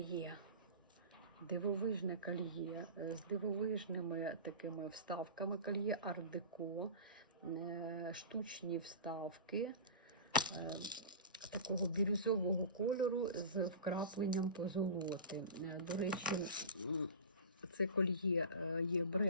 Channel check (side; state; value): both; inverted; correlation -0.32